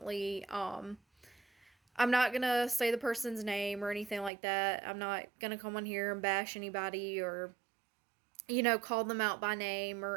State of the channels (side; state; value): left; drops out; at 4.3 s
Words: I'm not gonna say the person's name or anything like that. I'm not gonna come on here and bash anybody or call them out by name